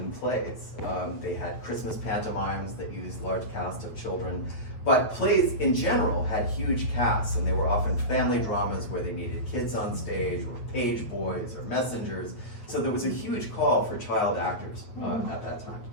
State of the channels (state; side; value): late; right; 8.6 ms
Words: plays. They had Christmas pantomimes that used large casts of children, but plays in general had huge casts, and they were often family dramas where they needed kids on stage, or page boys, or messengers. So there was a huge call for child actors at that time.